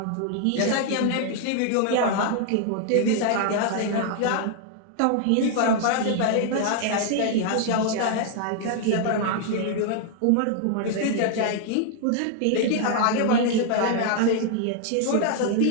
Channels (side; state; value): both; different; correlation 0.00